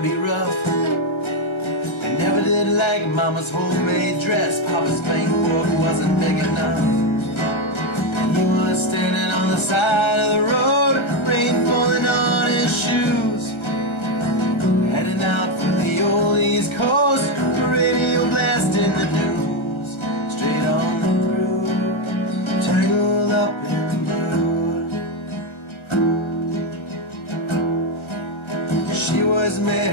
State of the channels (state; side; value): late; right; 1.3 ms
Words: be rough. They never did like Mama's homemade dress, Papa's bank book wasn't big enough. And he was standing on the side of the road, rain falling on his shoes, heading out for the old East Coast, radio blasting the news, straight on through, tangled up in blue. She was